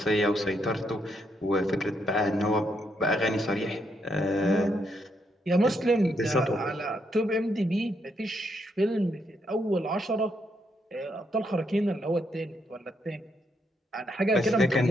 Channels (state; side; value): normal; both; correlation 0.77